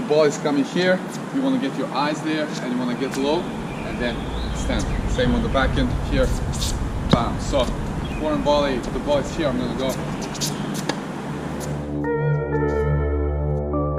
ball is coming here. You wanna get your eyes there, and you wanna get low, and then stand. Same on the back end here. Bam. So, forehand volley, the ball is here, I'm gonna go.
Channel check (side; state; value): both; identical; correlation 1.00